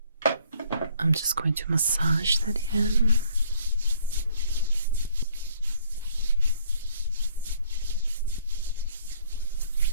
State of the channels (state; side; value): inverted; both; correlation -0.60